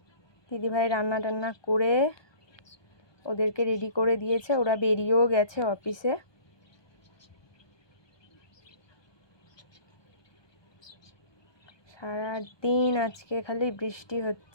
দিদিভাই রান্না টান্না করে ওদেরকে রেডি করে দিয়েছে। ওরা বেরিয়েও গেছে অফিসে। সারা দিন আজকে খালি বৃষ্টি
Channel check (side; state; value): right; late; 1.2 ms